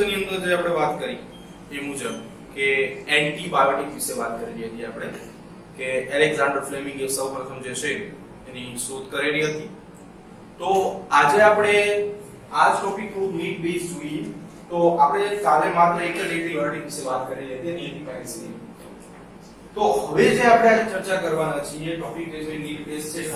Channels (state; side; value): identical; both; correlation 1.00